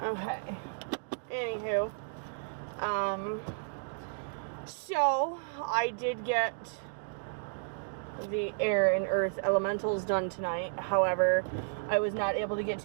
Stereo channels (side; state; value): left; silent; digital silence